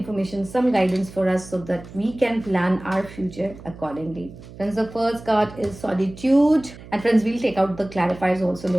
some guidance for us so that we can plan our future accordingly. Friends, the first card is solitude. And friends, we'll take out the clarifiers also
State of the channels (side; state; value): right; noise; hum, 17 dB below the sound